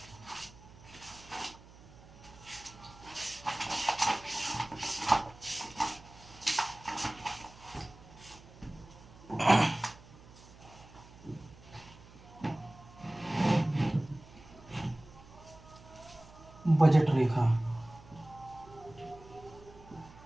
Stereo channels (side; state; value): right; noise; hum, 21 dB below the sound